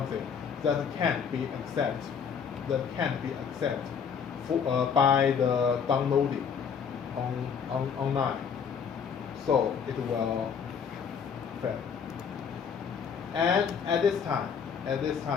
that can't be accepted. That can't be accepted by the downloading online. So it will fail. And at this time,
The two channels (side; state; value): right; quieter; 6.8 dB